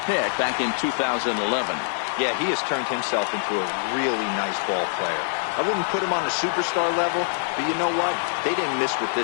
pick back in 2011. Yeah, he has turned himself into a really nice ball player. I wouldn't put him on the superstar level, but you know what? They didn't miss with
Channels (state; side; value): silent; right; digital silence